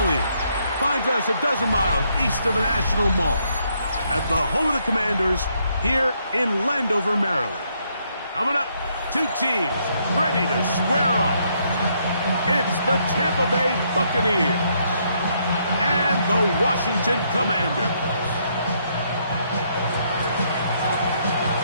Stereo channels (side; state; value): both; inverted; correlation -0.73